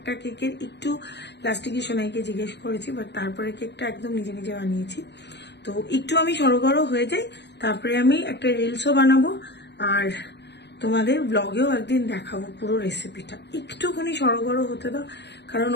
কেকের একটু লাস্টিকে সোনাইকে জিজ্ঞেস করেছি, বাট তারপরে কেকটা একদম নিজে নিজে বানিয়েছি। তো একটু আমি সড়গড় হয়ে যাই, তারপরে আমি একটা রিলসও বানাবো, আর তোমাদের ব্লগেও একদিন দেখাবো পুরো রেসিপিটা। একটুখানি সড়গড় হতে দাও, কারণ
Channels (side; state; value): right; late; 0.50 ms